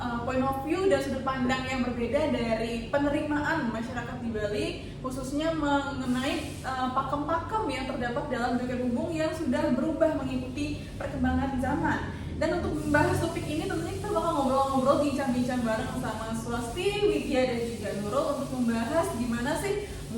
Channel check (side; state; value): both; identical; correlation 1.00